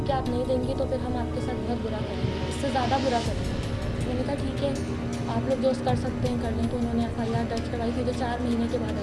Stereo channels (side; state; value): both; identical; correlation 1.00